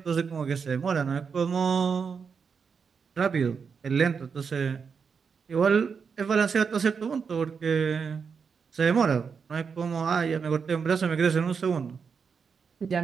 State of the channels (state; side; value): quieter; left; 5.9 dB